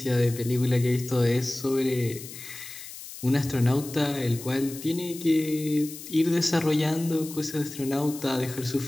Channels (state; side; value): noise; left; hiss, 13 dB below the sound